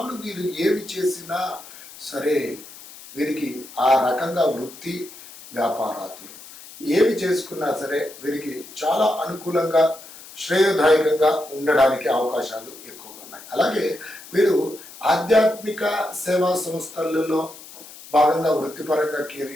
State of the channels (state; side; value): noise; left; hiss, 17 dB below the sound